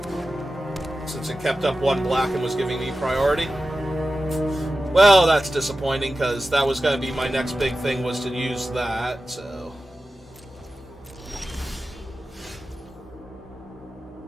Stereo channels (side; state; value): both; normal; correlation 0.94